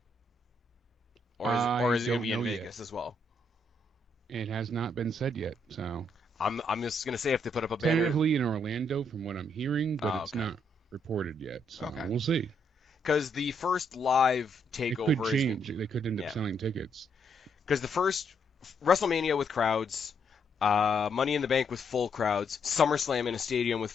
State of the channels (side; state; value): both; normal; correlation 0.75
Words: Or is it going to be in Vegas as well? It has not been said yet, so. I'm just going to say if they put up a banner. Tentatively in Orlando, from what I'm hearing, but it's not reported yet, so we'll see. Because the first live takeover it could change. They could end up selling tickets. Because the first WrestleMania with crowds, Money in the Bank with full crowds, SummerSlam in a stadium with